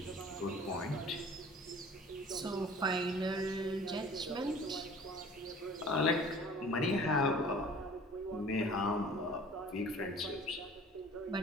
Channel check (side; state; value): both; normal; correlation 0.47